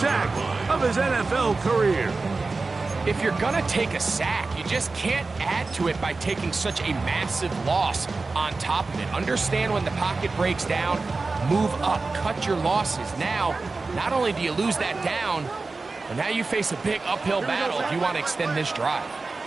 of his NFL career. If you're going to take a sack, you just can't add to it by taking such a massive loss on top of it. Understand when the pocket breaks down, move up, cut your losses. Now, not only do you lose that down, but now you face a big uphill battle if you want to extend this drive.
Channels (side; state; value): left; quieter; 3.8 dB